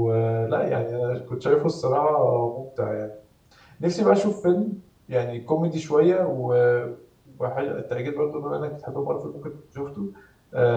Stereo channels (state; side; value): identical; both; correlation 1.00